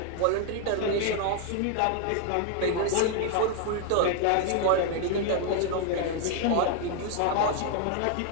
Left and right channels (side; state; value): both; different; correlation 0.00